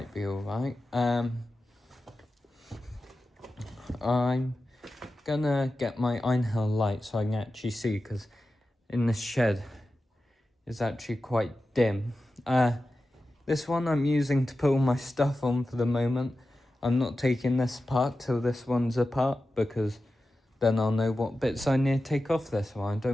be alright. I'm gonna get my Einhell light so I can actually see, because in this shed is actually quite dim. This one I'm using to put all my stuff on for the moment. I'm not taking this apart till this one's apart, because then I'll know what bits I need to take off this one. I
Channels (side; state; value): both; normal; correlation 0.93